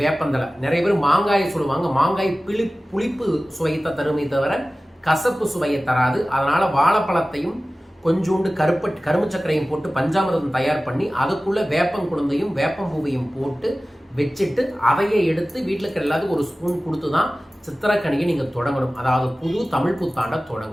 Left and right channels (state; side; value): normal; both; correlation 0.97